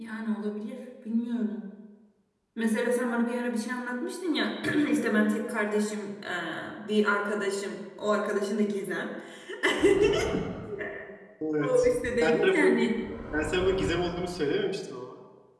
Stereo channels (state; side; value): identical; both; correlation 1.00